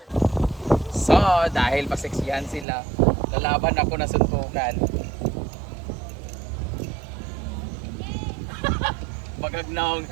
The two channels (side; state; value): left; drops out; at 2.7 s